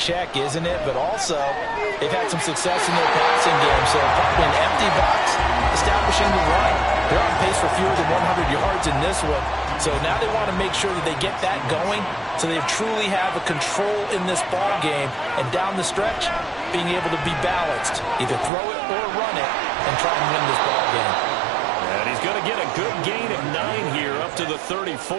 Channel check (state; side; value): drops out; left; at 18.5 s